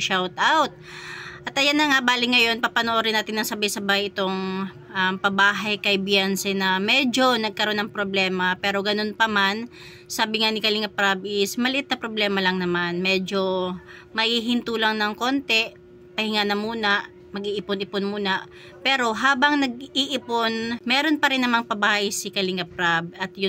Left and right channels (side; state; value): both; identical; correlation 1.00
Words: out. At ayan na nga, bali ngayon, papanoorin natin ng sabay-sabay itong pabahay kay Beyonce na medyo nagkaroon ng problema. Pero ganun pa man, sabi nga ni Kalingap Prab is, maliit na problema lang naman. Medyo maihinto lang ng konti, pahinga na muna, mag-iipon-ipon muna. Pero habang nag-iipon, meron pa rin namang pabahay si Kalingap Prab. At